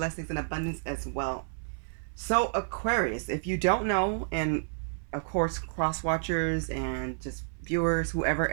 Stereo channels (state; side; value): silent; left; 58 dB below the other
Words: and abundance as well. So Aquarius, if you don't know, and of course cross watchers and just viewers, whoever,